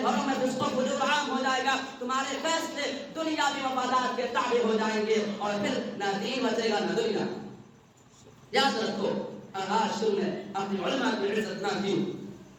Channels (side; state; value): both; identical; correlation 1.00